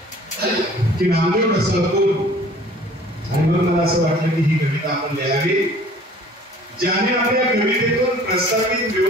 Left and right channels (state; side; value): normal; both; correlation 0.50